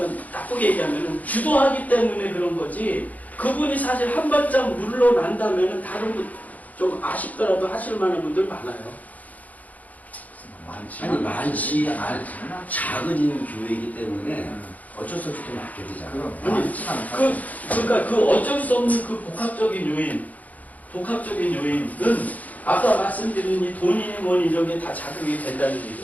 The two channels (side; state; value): right; late; 0.076 ms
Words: 나쁘게 얘기하면 주도하기 때문에 그런 거지 그분이 사실 한 발짝 물러난다면 다른 분 좀 아쉽더라도 하실 만한 분들 많아요. 아니 많지 않은 작은 교회이기 때문에 어쩔 수 없이 또 맡게 되잖아요. 그러니까 그 어쩔 수 없는 그 복합적인 요인은 아까 말씀드린 이 돈이니 뭐니 이런 게 다 자극이 된다는